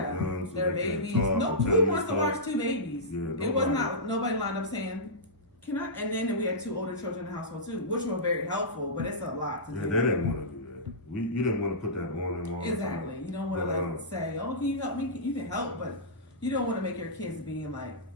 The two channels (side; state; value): both; normal; correlation -0.16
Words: their babies. Who wants to watch 2 babies? Yeah, it was not nobody lined up saying, "Can I?" And then we had 2 older children in the household too, which were very helpful, but it's a lot to do. Yeah, they didn't want to do that. You didn't want to put that on them all. Exactly. You don't want to say, "Oh, can you help me?" You can help, but you don't want to make your kids being like